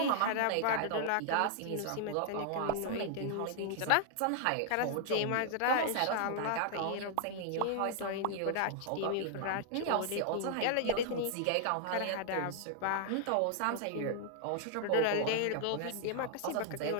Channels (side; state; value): both; different; correlation -0.01